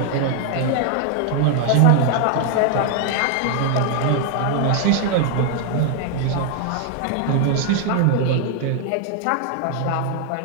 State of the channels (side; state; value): both; different; correlation 0.00